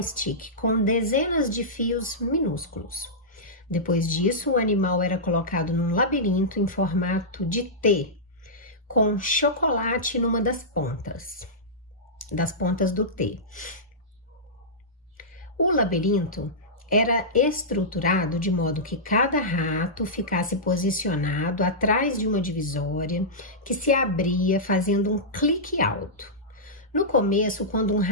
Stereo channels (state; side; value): normal; both; correlation -0.14